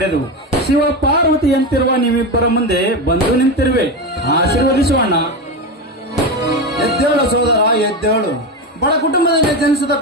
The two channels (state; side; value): normal; both; correlation 0.17